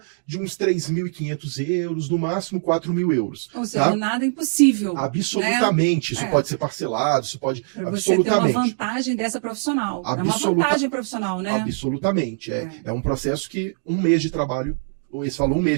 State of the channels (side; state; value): left; silent; digital silence